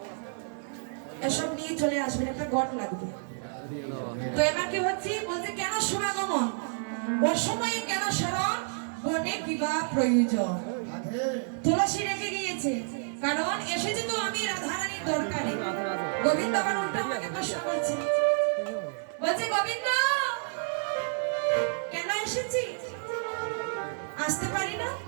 এসব নিয়ে চলে আসবেন, একটা গট লাগবে। তো এবার কি হচ্ছে, বলছে কেন শুভাগমন, অসময়ে কেন স্মরণ, বনে কিবা প্রয়োজন। তুলসী রেখে গিয়েছে, কারণ এসেছে তো আমি রাধারানীর দরকারে। গোবিন্দ আবার উল্টা আমাকে প্রশ্ন করছে, বলছে গোবিন্দ কেন এসেছি, আসতে পারি না?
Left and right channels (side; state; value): left; silent; digital silence